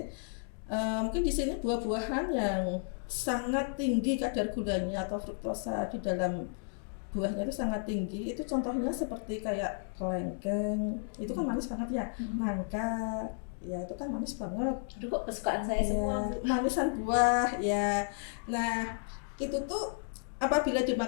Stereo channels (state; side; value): silent; right; digital silence